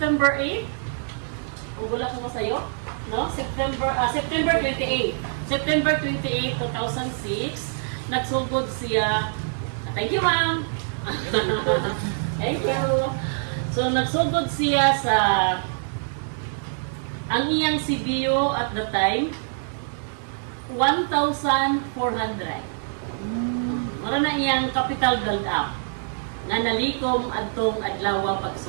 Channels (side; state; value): left; silent; digital silence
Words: 8. Kung wala ko sa'yo, no? September 28. September 28, 2006, nagsugod siya. Thank you, ma'am. Thank you. So, nagsugod siya sa ang iyang CBO at the time, 1,400. Mara na iyang capital build up nga nalikom adtong adlaw